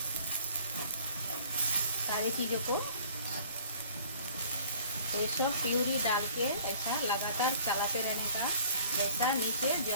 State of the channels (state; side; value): inverted; both; correlation -0.53